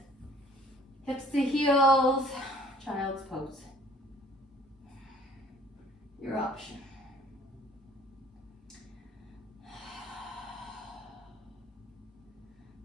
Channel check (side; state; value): both; normal; correlation 0.56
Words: Hips to heels, child's pose. Your option.